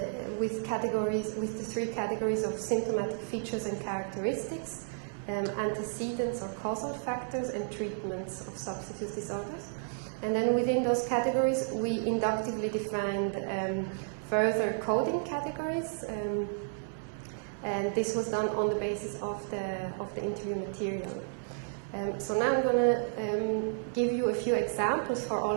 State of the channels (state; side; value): silent; left; 56 dB below the other